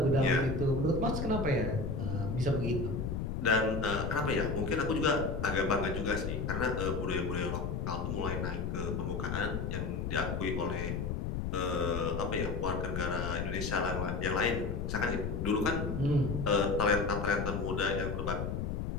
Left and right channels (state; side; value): noise; left; rumble, 2 dB below the sound